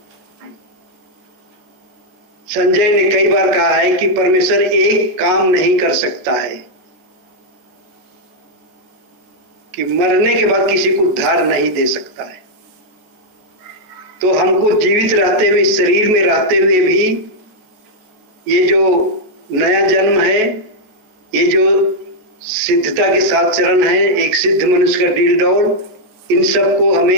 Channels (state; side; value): late; left; 14 ms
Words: संजय ने कई बार कहा है कि परमेश्वर एक काम नहीं कर सकता है कि मरने के बाद किसी को उद्धार नहीं दे सकता है। तो हमको जीवित रहते हुए, शरीर में रहते हुए भी ये जो नया जन्म है, ये जो सिद्धता के 7 चरण है, एक सिद्ध मनुष्य का डील डॉल, इन सबको हमें